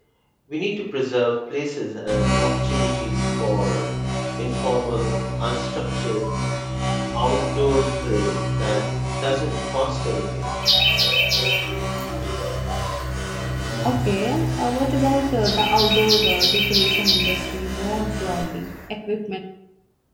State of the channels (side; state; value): both; identical; correlation 1.00